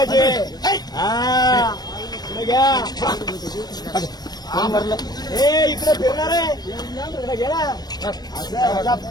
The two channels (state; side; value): late; right; 0.19 ms